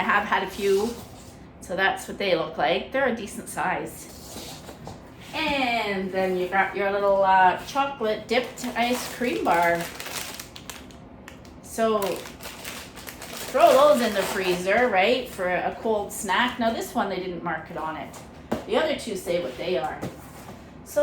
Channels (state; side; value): identical; both; correlation 1.00